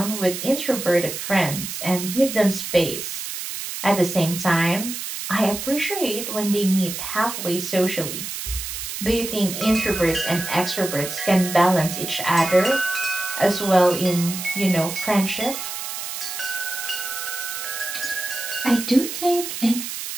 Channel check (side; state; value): right; noise; hiss, 6 dB below the sound